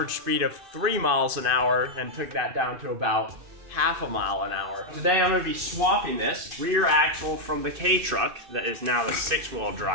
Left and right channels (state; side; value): late; left; 2.6 ms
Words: speed of 3 miles an hour and took that down to about half a mile an hour. Today I'm gonna be swapping this rear axle from the K-Truck that is now the 6-wheel